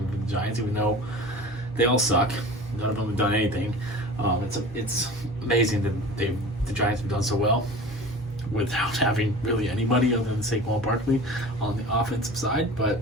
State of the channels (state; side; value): normal; both; correlation 0.38